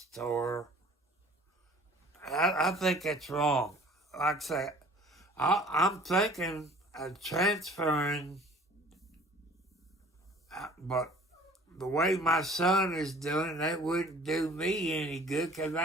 I think that's wrong. Like I say, I'm thinking of transferring, but the way my son is doing, that wouldn't do me any good because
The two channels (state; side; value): normal; both; correlation 0.50